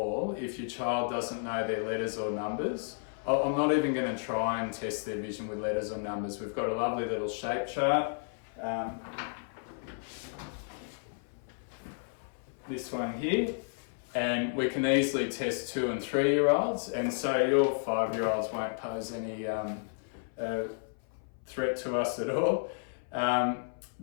if your child doesn't know their letters or numbers. I'm not even going to try and test their vision with letters or numbers. We've got a lovely little shape chart. This one here. And we can easily test 2 and 3-year-olds. And so your 5-year-olds won't pose any threat to us at all.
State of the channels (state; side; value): silent; right; 56 dB below the other